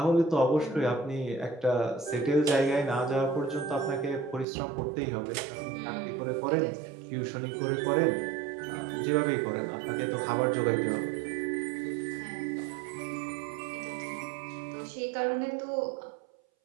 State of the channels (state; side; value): drops out; left; at 4.5 s